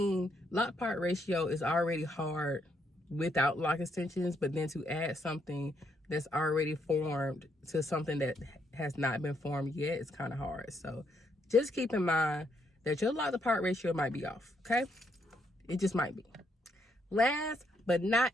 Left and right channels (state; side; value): normal; both; correlation 0.75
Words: lock part ratio is already hard without lock extensions, but then to add something that's already formed to something that has not been formed yet is kind of hard. So just keep in mind that your lock to part ratio might be off, okay? It just might be. Last but